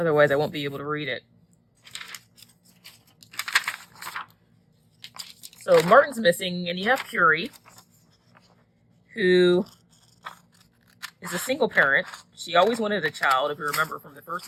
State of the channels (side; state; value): both; identical; correlation 1.00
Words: I won't be able to read it. So Martin's missing, and you have Curie, who is a single parent. She always wanted a child, if you remember from the first